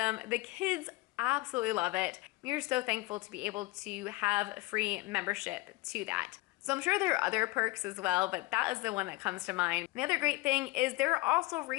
The kids absolutely love it. We are so thankful to be able to have free membership to that. So I'm sure there are other perks as well, but that is the one that comes to mind. The other great thing is there are also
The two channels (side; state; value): right; quieter; 21.7 dB